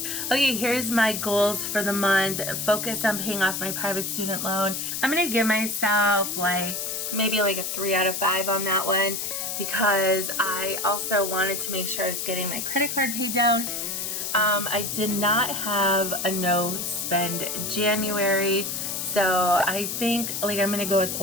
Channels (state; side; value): noise; left; hiss, 3 dB below the sound